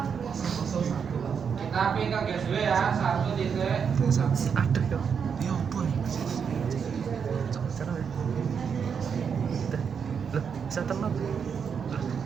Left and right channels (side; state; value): left; quieter; 6.7 dB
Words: Kita ping ke gateway ya, 1 titik. Ada kok. Ya apa nih? Cara ya. Loh, bisa tenang.